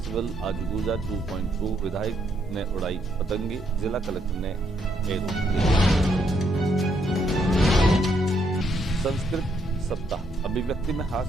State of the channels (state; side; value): normal; both; correlation 0.74